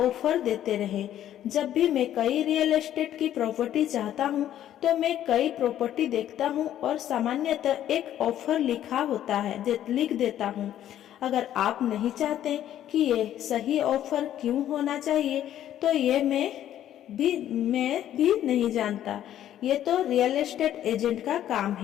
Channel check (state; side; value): quieter; right; 11.6 dB